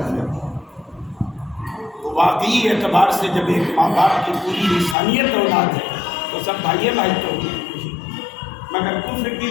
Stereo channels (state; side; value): drops out; right; at 5.0 s